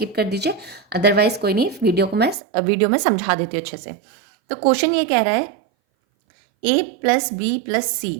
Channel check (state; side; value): drops out; left; at 2.4 s